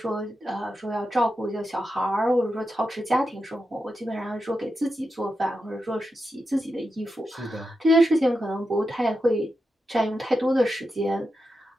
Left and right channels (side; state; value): both; normal; correlation 0.88